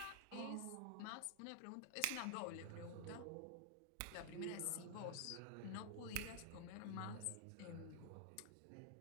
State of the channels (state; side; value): different; both; correlation -0.01